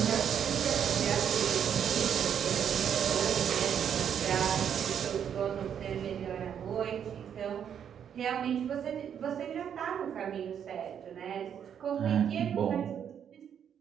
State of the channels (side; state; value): left; quieter; 8.5 dB